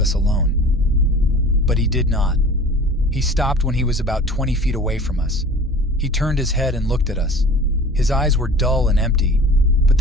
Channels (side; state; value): both; normal; correlation 0.42